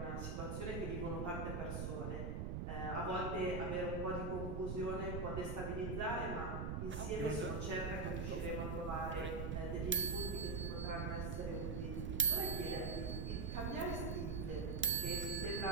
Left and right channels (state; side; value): noise; right; rumble, 2 dB below the sound